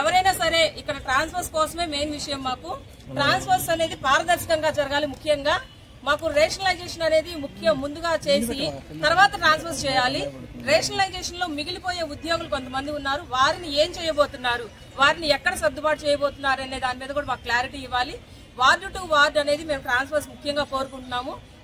సరే ఇక్కడ ట్రాన్స్ఫర్స్ కోసమే మెయిన్ విషయం. మాకు ట్రాన్స్ఫర్స్ అనేది పారదర్శకంగా జరగాలి. ముఖ్యంగా మాకు రేషనలైజేషన్ అనేది ముందుగా చేసి తర్వాత ట్రాన్స్ఫర్స్ చేయాలి. రేషనలైజేషన్ లో మిగిలిపోయే ఉద్యోగులు కొంతమంది ఉన్నారు. వారిని ఏం చేయబోతున్నారు, వారిని ఎక్కడ సర్దుబాటు చేయబోతున్నారు అనే దాని మీద కూడా మాకు క్లారిటీ ఇవ్వాలి. వార్డు టు వార్డు అనేది మేము ట్రాన్స్ఫర్స్ ముఖ్యంగా కోరుకుంటున్నాము.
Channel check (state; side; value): identical; both; correlation 1.00